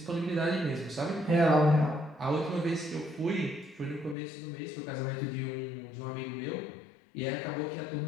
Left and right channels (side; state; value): right; drops out; at 4.2 s